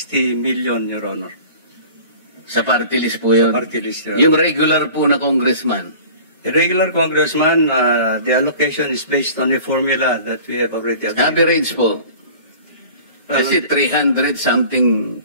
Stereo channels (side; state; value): both; inverted; correlation -0.44